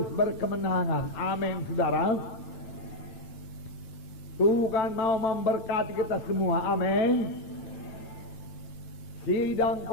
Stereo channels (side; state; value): right; late; 9.1 ms